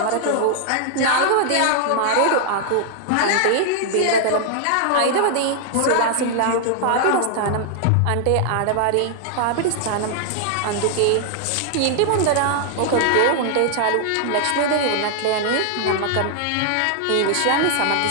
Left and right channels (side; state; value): both; different; correlation 0.00